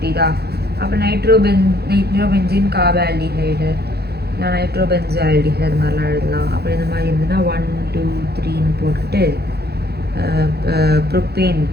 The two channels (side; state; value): left; late; 0.47 ms